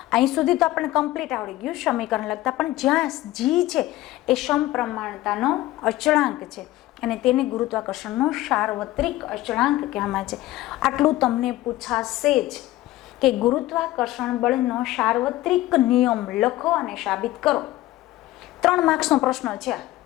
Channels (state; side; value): quieter; right; 16.4 dB